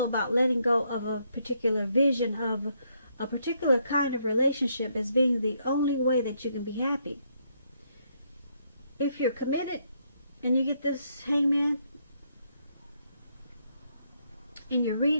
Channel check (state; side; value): inverted; both; correlation -0.74